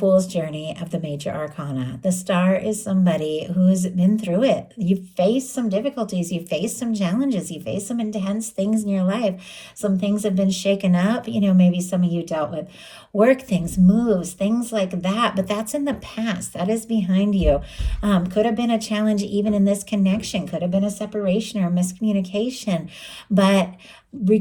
Journey of the Major Arcana. The star is somebody who's been through it. You've faced some difficulties. You've faced some challenges. You faced some intense things in your life. Some things have been shaken up. Maybe some of you dealt with work things, moves, things like that. But that's in the past. That is behind you. Could have been a challenge even in this connection. Could have been a separation or a miscommunication. But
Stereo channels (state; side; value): identical; both; correlation 1.00